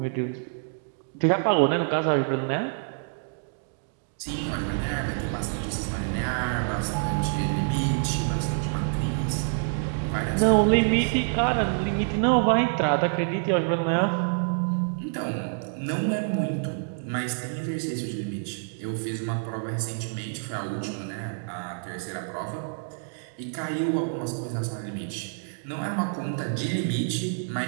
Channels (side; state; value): left; silent; digital silence